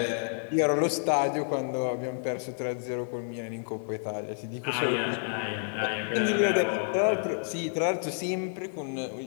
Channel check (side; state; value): right; silent; 58 dB below the other